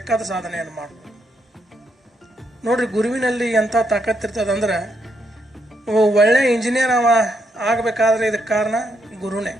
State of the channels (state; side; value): normal; both; correlation 0.78